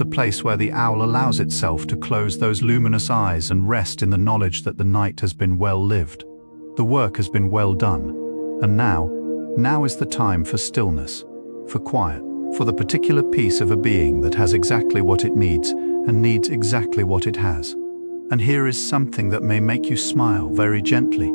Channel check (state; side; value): inverted; both; correlation -1.00